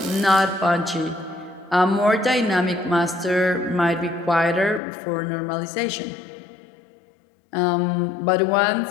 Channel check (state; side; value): drops out; right; at 4.8 s